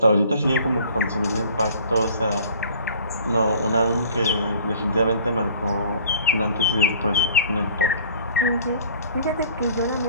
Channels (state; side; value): inverted; both; correlation -0.50